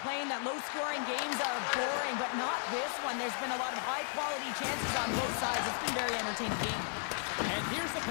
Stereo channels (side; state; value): right; silent; 55 dB below the other